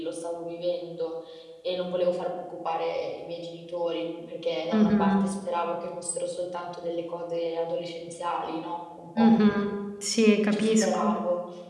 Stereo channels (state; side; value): identical; both; correlation 1.00